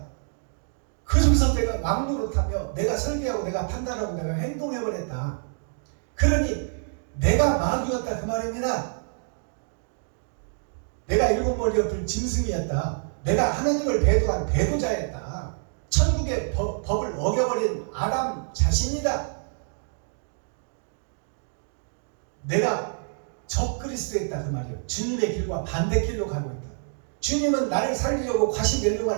그 중에서 내가 왕노릇하며 내가 설계하고 내가 판단하고 내가 행동해버렸다. 그러니 내가 마귀였다 그 말입니다. 내가 일곱 머리 엎을 짐승이었다. 내가 하나님을 배도한 배도자였다. 천국의 법을 어겨버린 아담 자신이다. 내가 적그리스도였다 그 말이에요. 주님의 길과 반대길로 가고 있다. 주님은 나를 살리려고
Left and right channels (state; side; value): silent; left; digital silence